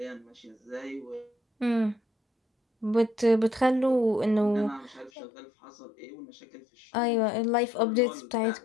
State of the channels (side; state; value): right; drops out; at 5.1 s